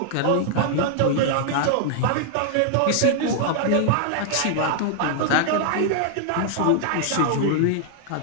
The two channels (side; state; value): both; different; correlation 0.00